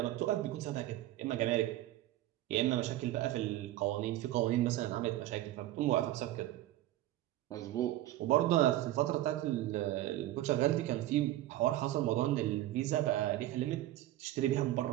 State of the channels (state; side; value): quieter; left; 14.9 dB